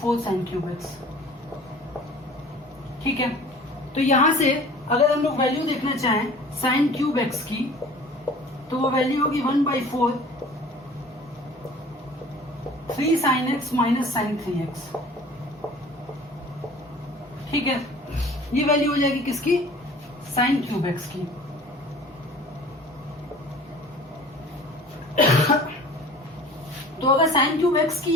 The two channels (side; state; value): both; normal; correlation 0.46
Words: sin cube x। ठीक है, तो यहां से अगर हम लोग वैल्यू देखना चाहें साइन क्यूब x की, तो वो वैल्यू होगी 1/4 3 sin x - sin 3x। ठीक है, ये वैल्यू हो जाएगी किसकी, साइन क्यूब x की। तो अगर साइन क्यूब x की